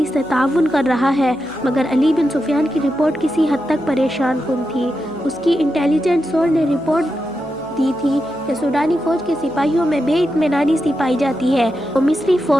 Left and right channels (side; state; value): right; noise; hum, 25 dB below the sound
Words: سے تعاون کر رہا ہے، مگر علی بن سفیان کی رپورٹ کسی حد تک پریشان کن تھی۔ اس کی انٹیلیجنس سورس نے رپورٹ دی تھی کہ سوڈانی فوج کے سپاہیوں میں بے اطمینانی سی پائی جاتی ہے، وہ مصری